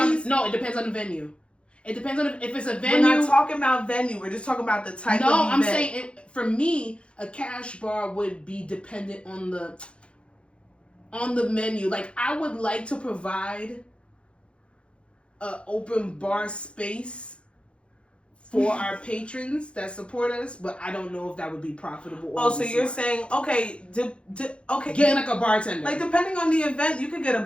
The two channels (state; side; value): late; right; 0.058 ms